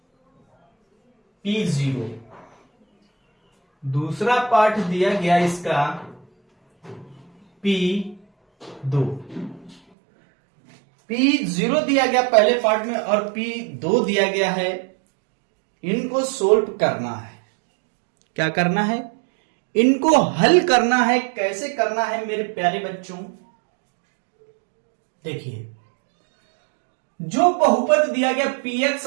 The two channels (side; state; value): left; drops out; at 9.8 s